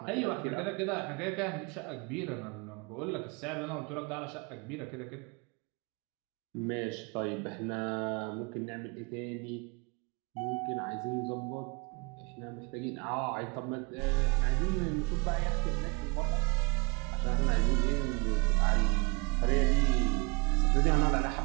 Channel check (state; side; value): quieter; left; 29.9 dB